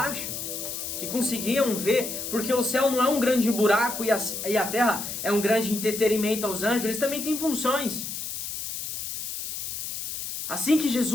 que conseguiam ver, porque o céu não é um grande buraco e a terra é um grande entretenimento aos anjos, eles também têm funções. Assim que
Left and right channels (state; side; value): noise; left; hiss, 6 dB below the sound